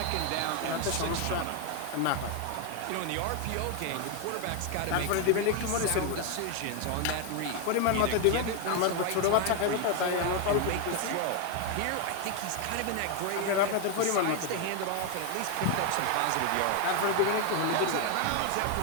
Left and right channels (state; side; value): different; both; correlation 0.01